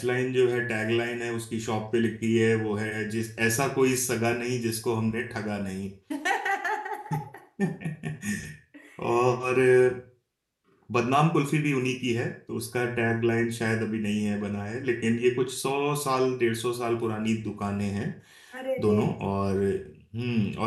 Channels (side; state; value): both; identical; correlation 1.00